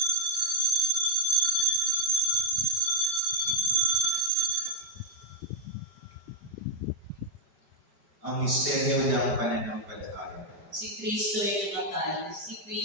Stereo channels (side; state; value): left; late; 5.1 ms